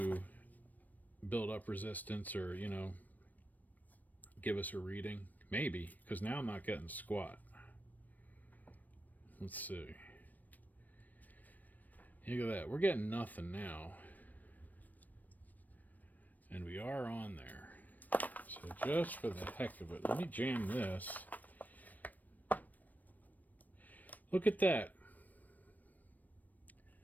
build up resistance or, you know, give us a reading. Maybe, because now I'm not getting squat. Let's see. Look at that. We're getting nothing now. And we are on there. So just for the heck of it, let me jam this. Look at that.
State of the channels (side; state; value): right; late; 0.083 ms